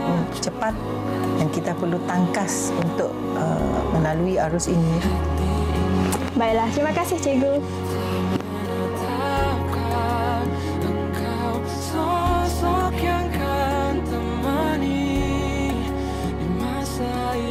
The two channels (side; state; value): both; identical; correlation 1.00